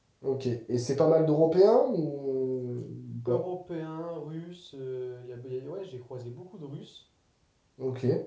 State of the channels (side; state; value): both; identical; correlation 1.00